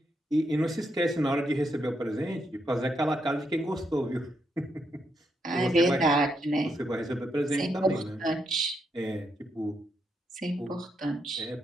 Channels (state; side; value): normal; both; correlation 0.80